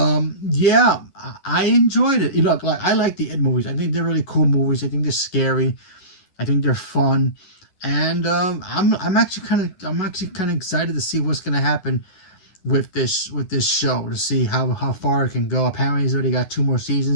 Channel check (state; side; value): late; right; 11 ms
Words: yeah, I enjoyed it. You know, like, I like the It movies. I think they're really cool movies. I think they're scary. I think they're fun. And I'm actually kind of excited to see what's gonna happen with this show, to see how far it can go. Apparently he's already got 2 more